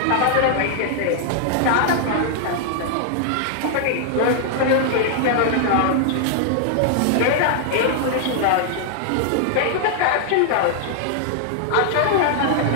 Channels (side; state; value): both; different; correlation -0.01